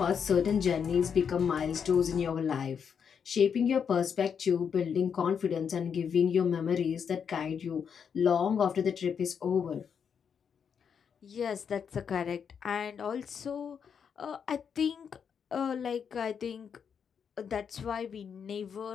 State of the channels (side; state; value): right; quieter; 7.1 dB